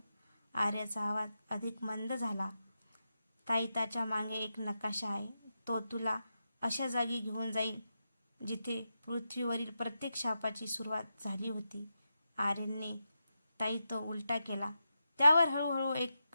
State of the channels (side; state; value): both; inverted; correlation -0.88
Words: आर्याचा आवाज अधिक मंद झाला. ताईताच्या मागे एक नकाशा आहे. तो तुला अशा जागी घेऊन जाईल जिथे पृथ्वीवरील प्रत्येक शापाची सुरुवात झाली होती. आर्यनने ताईत उलटा केला. त्यावर हळूहळू